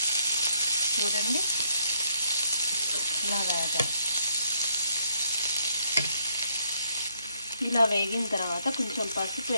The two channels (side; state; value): both; inverted; correlation -0.71